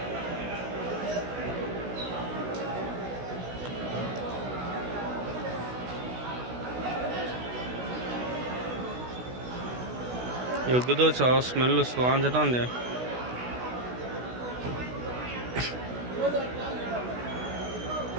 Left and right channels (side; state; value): left; late; 16 ms